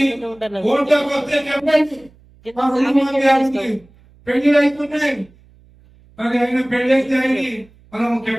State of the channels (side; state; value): right; noise; hum, 28 dB below the sound